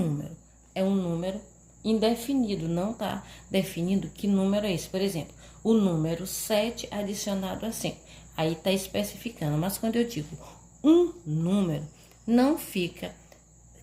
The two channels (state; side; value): identical; both; correlation 1.00